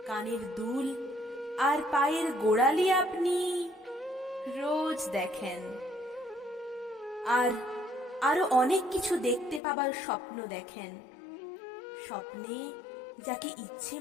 কানের দুল আর পায়ের গোড়ালি আপনি রোজ দেখেন। আর আরো অনেক কিছু দেখতে পাবার স্বপ্ন দেখেন। স্বপ্নে যাকে ইচ্ছে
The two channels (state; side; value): drops out; right; at 9.6 s